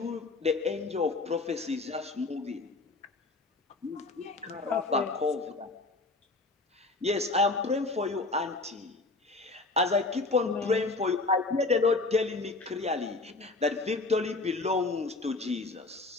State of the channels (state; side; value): quieter; right; 3.4 dB